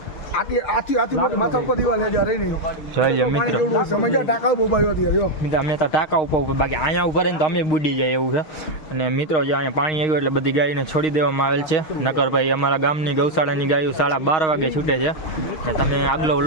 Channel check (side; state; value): right; late; 6.4 ms